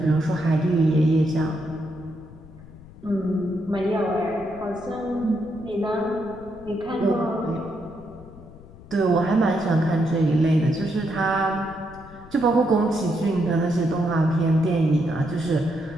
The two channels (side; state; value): left; noise; rumble, 19 dB below the sound